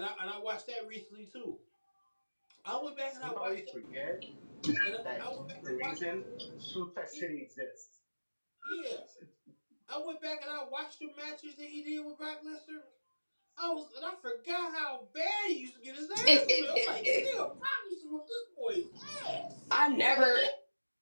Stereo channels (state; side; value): inverted; both; correlation -1.00